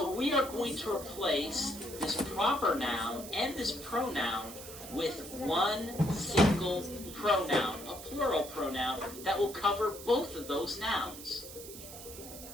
we are going to replace this proper noun and this pronoun with one single pronoun, a plural pronoun that will cover both of those nouns.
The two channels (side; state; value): right; noise; hiss, 13 dB below the sound